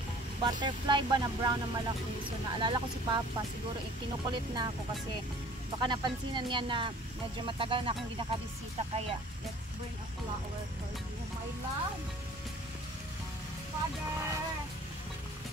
butterfly ba na brown na malaki. So naalala ko si Papa, siguro kinukulit na ako kasi baka napansinan niya na medyo matagal na akong hindi nakabisita, kaya let's bring a flower for you, my love. Father!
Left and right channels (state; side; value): normal; both; correlation 0.50